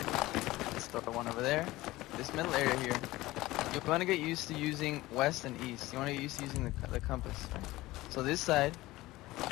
Let's throw one over there. This middle area here, you want to get used to using west and east. You want to get used to using the compass. Right? So this side,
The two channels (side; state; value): right; quieter; 18.3 dB